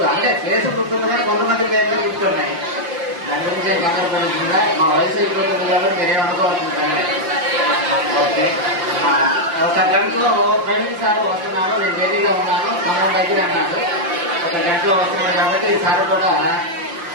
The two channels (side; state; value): left; late; 5.9 ms